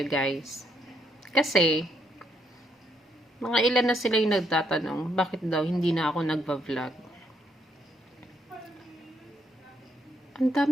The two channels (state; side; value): normal; both; correlation 0.74